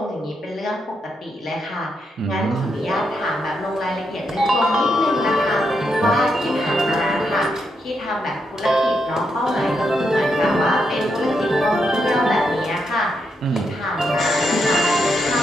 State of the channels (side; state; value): both; normal; correlation 0.81